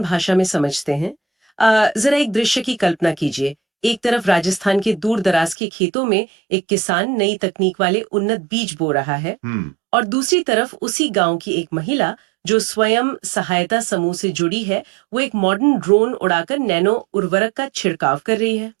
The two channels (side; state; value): left; drops out; at 5.6 s